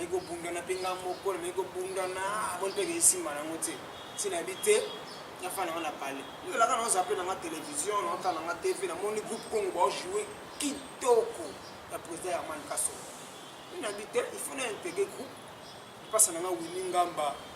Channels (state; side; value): identical; both; correlation 1.00